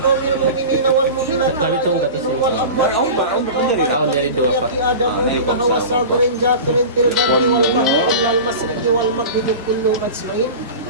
mu'minina wal mu'minat wal amwat Tahun dari 2 Pak. adamu hawa sagrin jakirin tilbari wal mahri illal masriki wal maghribi kulluhum ajmain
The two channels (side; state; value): both; inverted; correlation -0.32